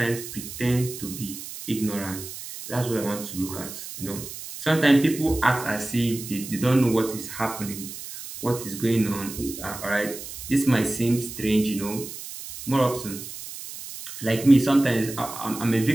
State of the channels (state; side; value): noise; right; hiss, 11 dB below the sound